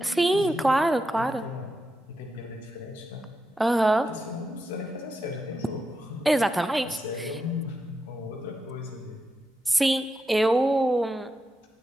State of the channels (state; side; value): normal; both; correlation 0.87